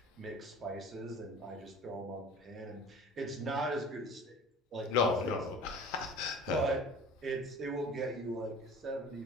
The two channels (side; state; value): both; normal; correlation 0.42